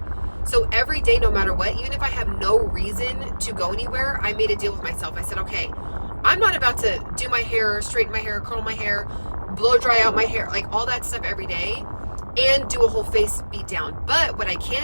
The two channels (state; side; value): inverted; both; correlation -1.00